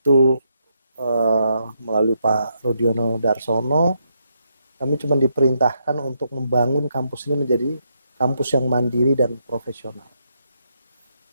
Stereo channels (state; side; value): inverted; both; correlation -0.78